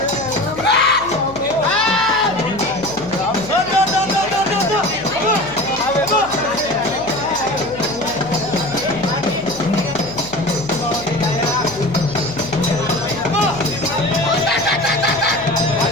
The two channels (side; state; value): left; noise; hum, 16 dB below the sound